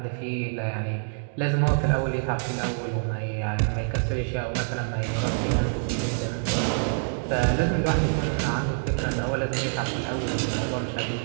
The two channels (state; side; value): silent; left; digital silence